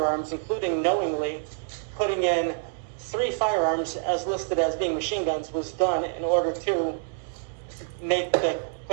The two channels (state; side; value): silent; left; 60 dB below the other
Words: including knowingly putting in 3 firearms as listed as being machine guns, was done in order to make the